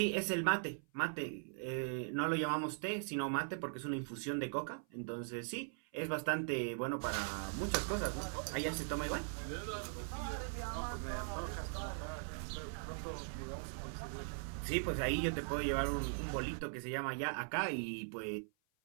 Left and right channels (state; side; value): silent; left; 51 dB below the other